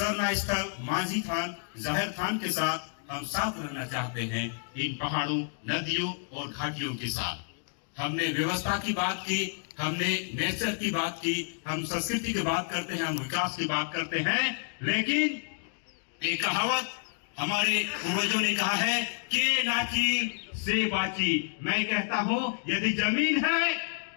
स्थल, मांझी थान, जाहिर थान के साथ। हम साथ रहना चाहते हैं इन पहाड़ों, नदियों और घाटियों के साथ। हमने व्यवस्था की बात की, हमने नेचर की बात की, हम संस्कृति की बात करते हैं, हम विकास की बात करते हैं, लेकिन एक कहावत हमारे पूर्वजों ने कहा है के नाची से बाची। मैं कहता हूँ यदि जमीन है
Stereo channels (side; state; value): right; silent; 58 dB below the other